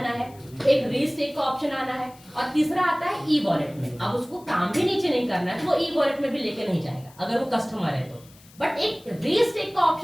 है, एक रीस्टेक का ऑप्शन आना है, और तीसरा आता है ई वॉलेट में। अब उसको काम भी नीचे नहीं करना है तो वो ई वॉलेट में भी लेके नहीं जाएगा अगर वो कस्टमर है तो। बट एक रीस्टेक का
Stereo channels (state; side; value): noise; left; hiss, 25 dB below the sound